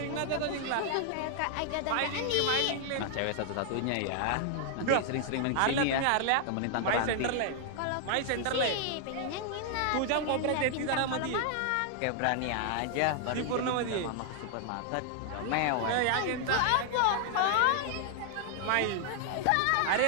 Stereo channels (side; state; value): both; different; correlation 0.00